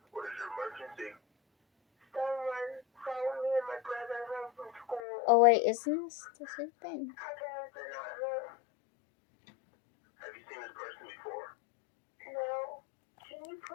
is your emergency? Someone found me and my brother home from school. Oh wait, isn't this the same thing? Our parents are not home. Have you seen this person before? No. Can you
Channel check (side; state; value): right; drops out; at 5.1 s